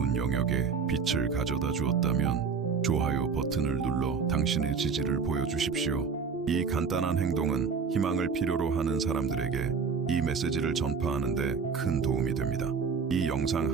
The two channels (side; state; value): left; quieter; 5.7 dB